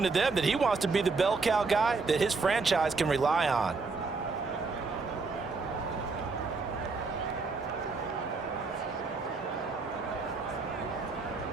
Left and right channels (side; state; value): left; quieter; 4.2 dB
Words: to them that he wants to be the bell cow guy that his franchise can rely on.